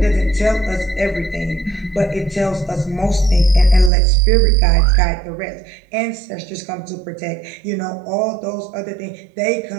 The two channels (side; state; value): left; drops out; at 3.9 s